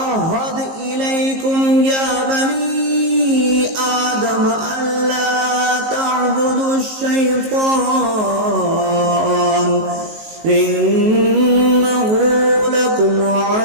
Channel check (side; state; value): left; late; 19 ms